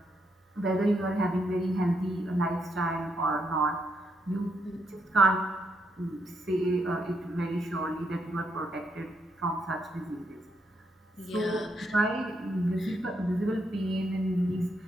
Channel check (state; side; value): normal; both; correlation 0.77